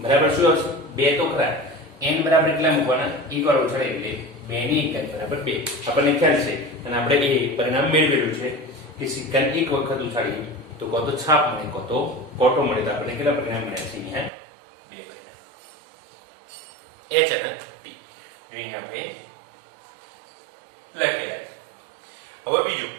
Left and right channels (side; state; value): left; drops out; at 14.3 s